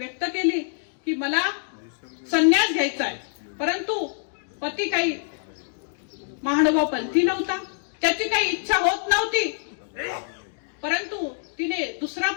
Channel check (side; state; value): right; silent; digital silence